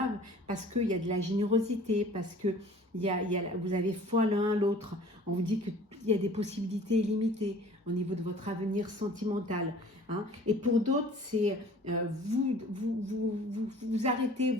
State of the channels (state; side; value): normal; both; correlation 0.48